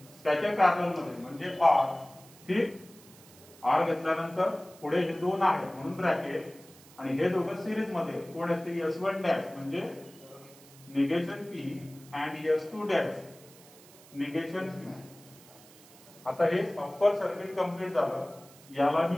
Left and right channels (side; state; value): right; noise; hiss, 23 dB below the sound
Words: त्याच्या पॅरलल मध्ये म्हणजे R. ठीक, R घेतल्यानंतर पुढे हे दोन आहेत म्हणून ब्रॅकेट, आणि हे दोघं सिरीज मध्ये कोण आहेत ते S1 डॅश म्हणजे negation P and S2 dash negation Q. आता हे अप्पर सर्किट कंप्लीट झालं. याला